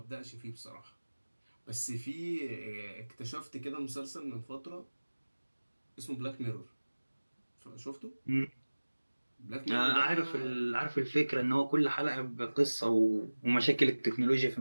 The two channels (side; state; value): both; inverted; correlation -1.00